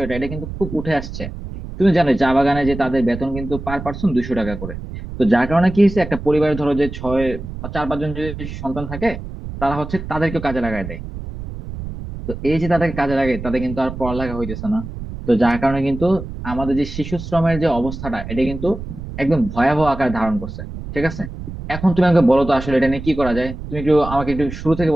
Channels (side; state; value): right; noise; rumble, 9 dB below the sound